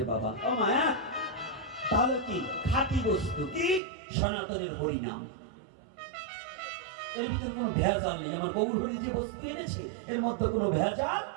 বাবা? ও মায়া, তাহলে কি খাঁটি বস্তু কি? সনাতনের হরিনাম। এর ভিতরে কোনো ভেজাল নেই। আমার গৌর হরি যে বস্তু এনেছে এর মধ্যে কোনো ভেজাল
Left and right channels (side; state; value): left; drops out; at 3.8 s